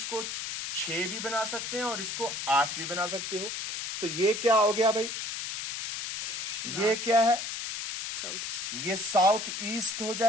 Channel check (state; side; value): noise; left; hiss, 5 dB below the sound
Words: 6 भी बना सकते हैं और इसको 8 भी बना सकते हो। तो ये क्या हो गया भाई, ये क्या है, ये साउथ ईस्ट हो